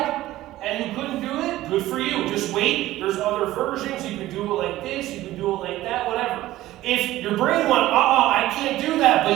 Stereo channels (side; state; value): left; quieter; 15.7 dB